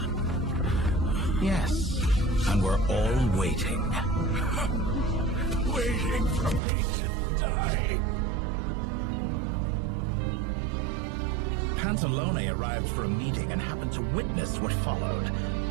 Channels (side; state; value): left; drops out; at 6.6 s